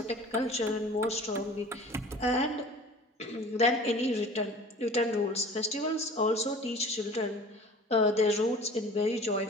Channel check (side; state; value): both; normal; correlation 0.43